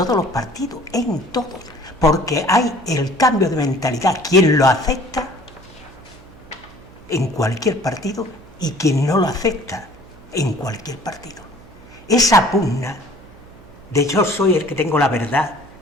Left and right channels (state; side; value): noise; right; hum, 22 dB below the sound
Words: los partidos, en todos, porque hay el cambio de mentalidad, quien lo acepta en cualquier partido y quien no lo acepta en cualquier partido. Esa pugna de yo soy el que tengo la verdad,